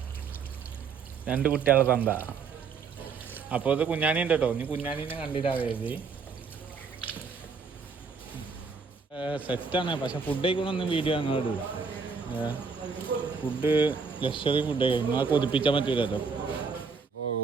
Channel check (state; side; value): quieter; left; 5.3 dB